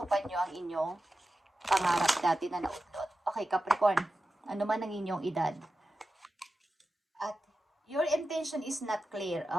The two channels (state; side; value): normal; both; correlation 0.92